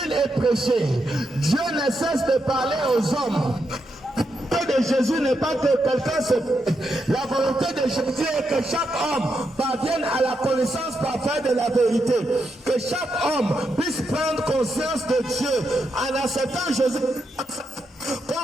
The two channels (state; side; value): normal; both; correlation 0.83